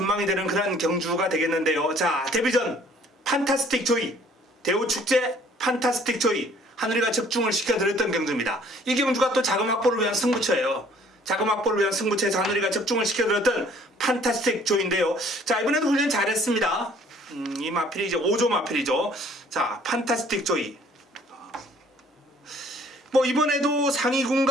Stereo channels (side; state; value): both; normal; correlation 0.57